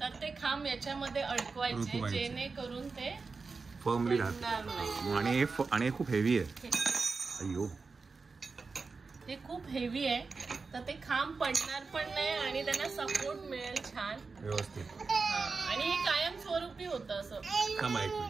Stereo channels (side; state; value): left; quieter; 4.4 dB